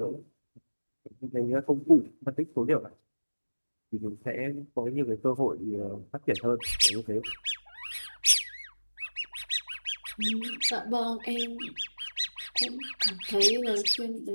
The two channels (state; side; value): inverted; both; correlation -1.00